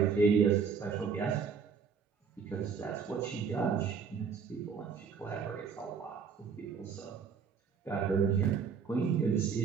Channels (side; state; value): left; quieter; 6.2 dB